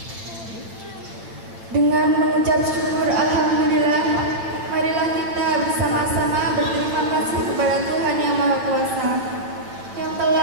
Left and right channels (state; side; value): late; left; 8.7 ms